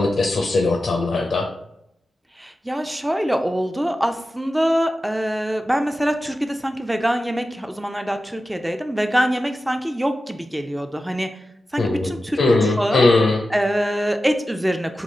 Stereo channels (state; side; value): normal; both; correlation 0.93